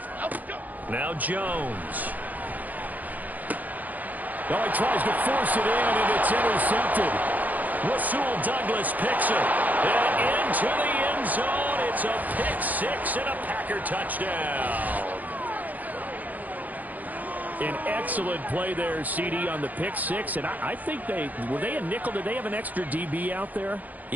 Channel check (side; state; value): left; late; 0.081 ms